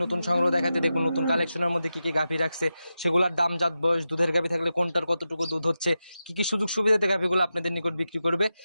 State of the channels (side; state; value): both; inverted; correlation -0.91